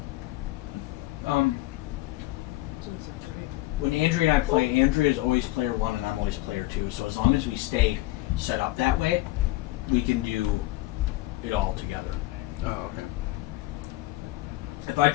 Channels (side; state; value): right; quieter; 18.3 dB